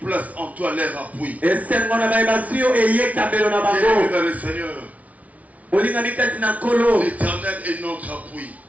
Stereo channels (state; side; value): late; left; 0.069 ms